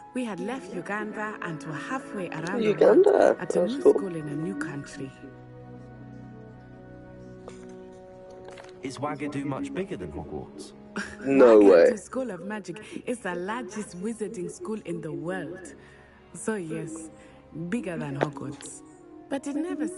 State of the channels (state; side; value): identical; both; correlation 1.00